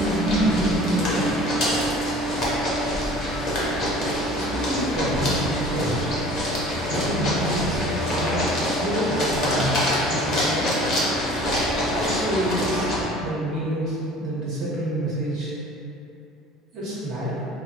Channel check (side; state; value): both; normal; correlation 0.47